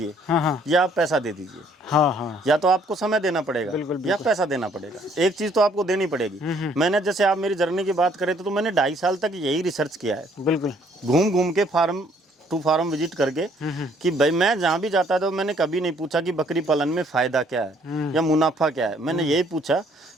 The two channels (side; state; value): both; normal; correlation 0.63